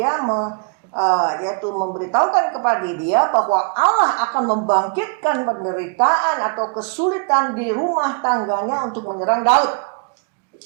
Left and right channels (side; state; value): left; quieter; 36.7 dB